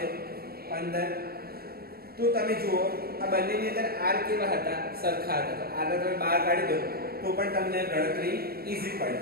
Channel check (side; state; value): left; late; 0.45 ms